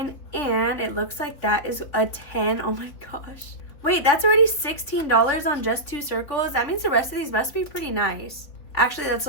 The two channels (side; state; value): right; late; 3.9 ms